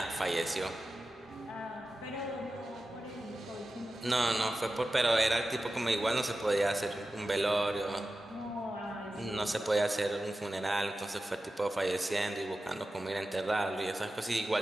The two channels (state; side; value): normal; both; correlation 0.93